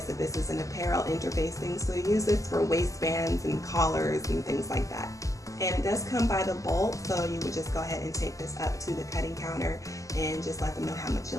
that this is an apparel interfacing. So you use this for waistbands and collars and things like that. And it does come by the bolt, so you would just go ahead and take this up to the cutting counter and just let them know how much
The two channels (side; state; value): right; late; 0.16 ms